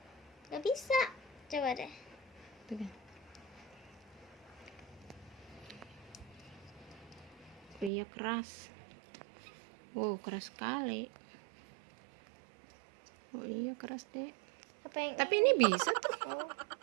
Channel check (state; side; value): drops out; left; at 7.9 s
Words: Nggak bisa. Coba deh. Tuh kan. Oh iya, keras. Keras sekali. Oh iya, keras deh. Apa yang Tapi ini bisa tuh. Oh.